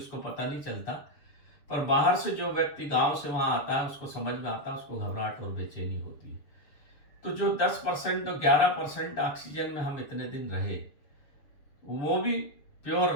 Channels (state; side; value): late; right; 6.9 ms